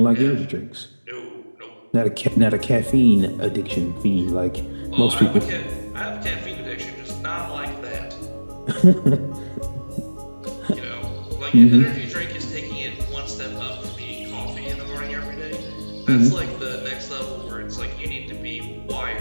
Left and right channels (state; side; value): inverted; both; correlation -1.00